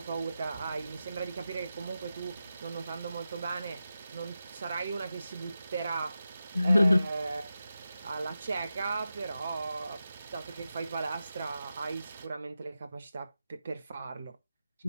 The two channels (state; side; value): inverted; both; correlation -0.91